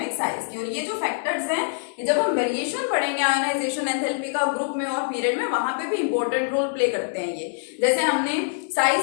साइज की। और ये जो फैक्टर्स हैं ये जब हम वेरिएशन पढ़ेंगे आयनाइजेशन एंथैल्पी का ग्रुप में और पीरियड में, वहां पे भी इंपॉर्टेंट रोल प्ले करते हैं ये। जैसे हमने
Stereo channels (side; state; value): right; silent; 62 dB below the other